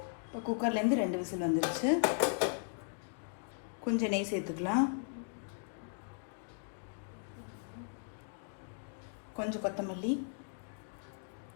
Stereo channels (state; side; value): silent; right; digital silence